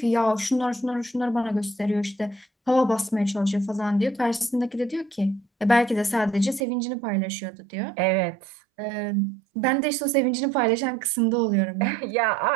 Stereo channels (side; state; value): left; drops out; at 6.7 s